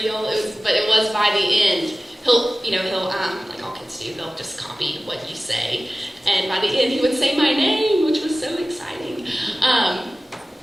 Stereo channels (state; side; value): normal; both; correlation 0.97